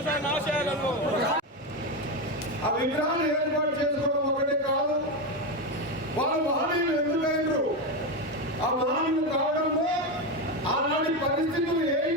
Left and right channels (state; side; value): normal; both; correlation 0.13